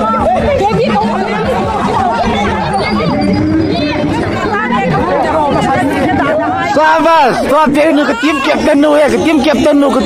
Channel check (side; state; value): both; identical; correlation 1.00